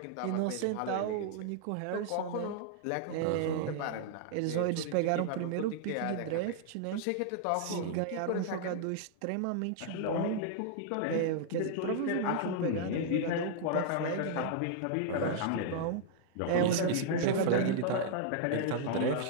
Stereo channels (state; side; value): different; both; correlation -0.01